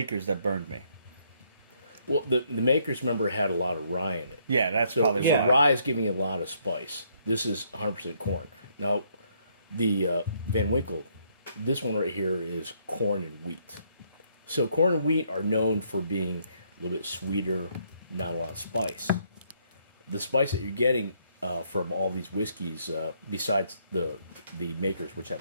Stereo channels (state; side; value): inverted; both; correlation -0.70